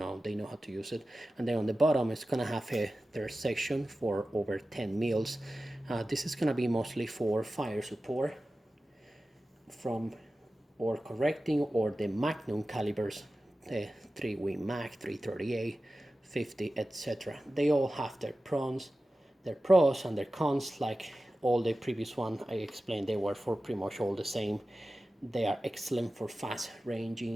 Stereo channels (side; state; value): both; normal; correlation 0.95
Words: they know how to use it. And then on the bottom, it's gonna have a third section for over 10 mils. This is gonna be mostly for fire support from or correcting or the magnum calibers, the 3-wing mag, 338, 50, etc. They all have their pros and their cons. Like all the previous one I explained, they were for pretty much all the same. They are excellent for fast